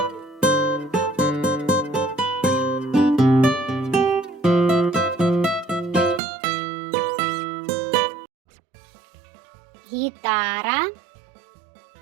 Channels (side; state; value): left; drops out; at 6.2 s